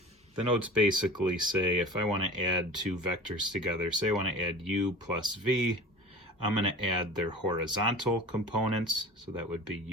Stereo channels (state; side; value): normal; both; correlation 0.37